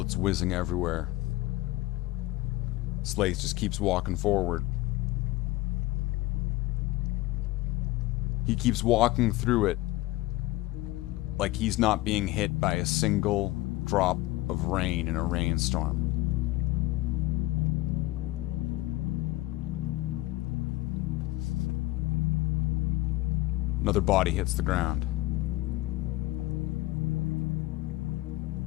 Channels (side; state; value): right; quieter; 17.9 dB